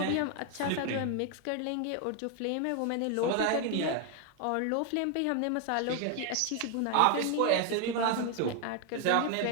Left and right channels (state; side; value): different; both; correlation 0.01